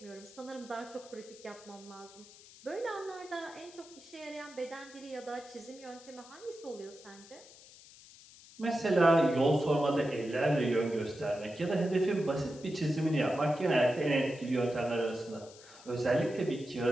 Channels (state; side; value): noise; left; hiss, 21 dB below the sound